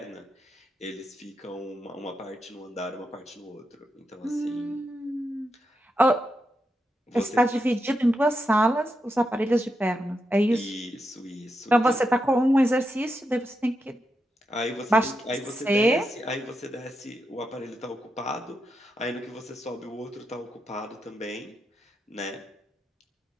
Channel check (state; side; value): normal; both; correlation 0.85